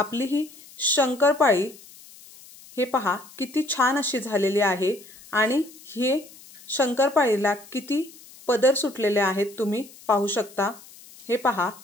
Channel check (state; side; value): noise; left; hiss, 21 dB below the sound